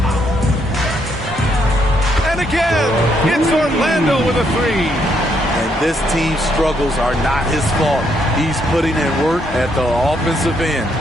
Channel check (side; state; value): both; normal; correlation 0.74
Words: And again, it's Orlando with a 3. And this team's struggles are not his fault. He's putting in work at the offensive end.